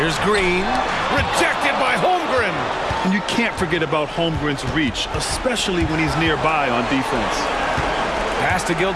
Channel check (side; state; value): both; identical; correlation 1.00